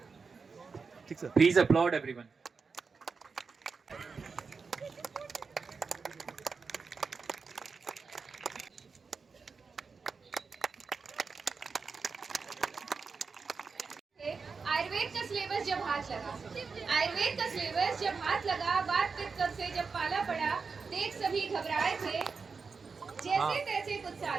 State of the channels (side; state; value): left; quieter; 5.0 dB